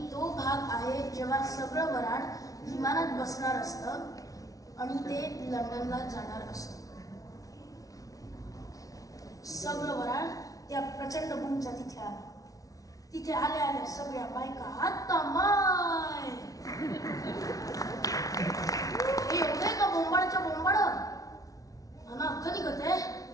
तो भाग आहे जेव्हा सगळं वराड विमानात बसणार असतं आणि ते लंडनला जाणार असतं. सगळं वराड त्या प्रचंड बुमच्या तिथे आलं. तिथे आल्या आल्या सगळ्या बायका आता माय हे एवढे का बोंबाडच्या बोंबाड मला अख्ख निघते.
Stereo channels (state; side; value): late; right; 0.18 ms